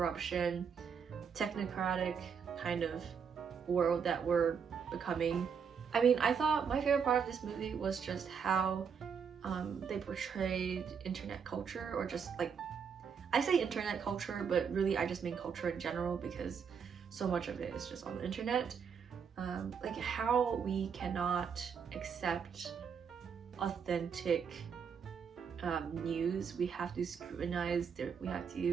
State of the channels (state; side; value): quieter; left; 6.7 dB